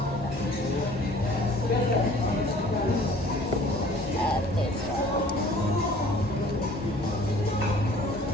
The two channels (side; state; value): both; normal; correlation 0.51